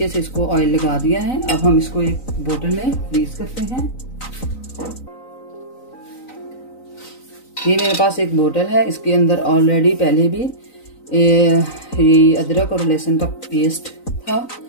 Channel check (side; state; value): right; late; 3.9 ms